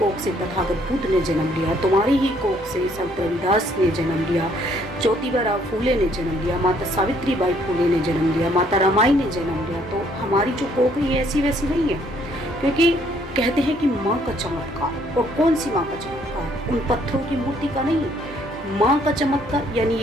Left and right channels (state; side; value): normal; both; correlation 0.65